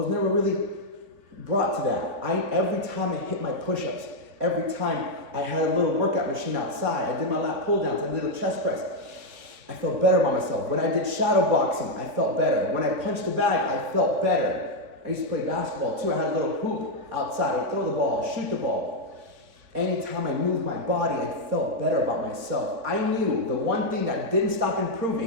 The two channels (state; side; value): late; left; 4.0 ms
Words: never really brought to that. Every time I hit my push-ups, every time I had a little workout machine outside, I did my lat pull-downs, I did a little chest press, I felt better about myself. When I did shadow boxing, I felt better. When I punched the bag, I felt better. I used to play basketball too. I had a little hoop outside. I would throw the ball, shoot the ball. Anytime I moved my body, I felt better about myself. I knew the one thing that didn't stop